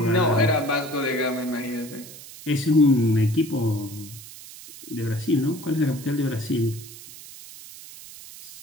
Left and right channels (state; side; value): noise; right; hiss, 16 dB below the sound